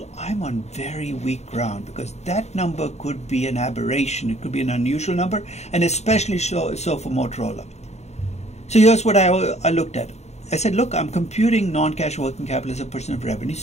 I'm on very weak ground because that number could be an aberration. It could be an unusual number, and especially so for Motorola. So here's what I looked at. I said, look, I'm computing non-cash working capital as a percent of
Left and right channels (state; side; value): late; right; 0.32 ms